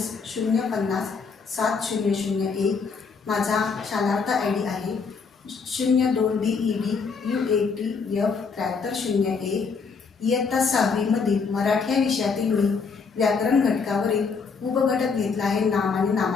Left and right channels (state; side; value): quieter; right; 5.2 dB